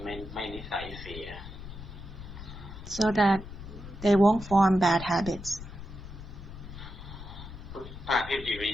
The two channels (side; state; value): left; noise; rumble, 12 dB below the sound